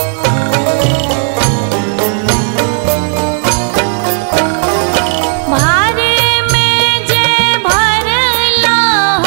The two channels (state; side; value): silent; left; 60 dB below the other